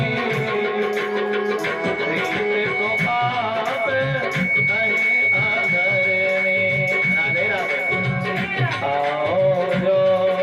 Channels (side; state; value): both; identical; correlation 1.00